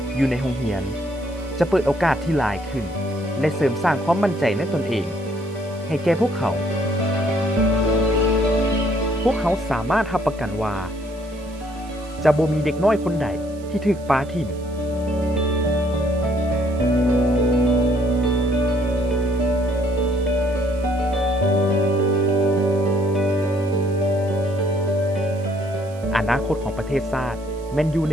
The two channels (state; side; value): noise; right; hiss, 24 dB below the sound